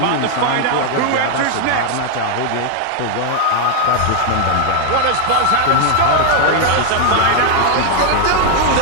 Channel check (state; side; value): different; both; correlation 0.00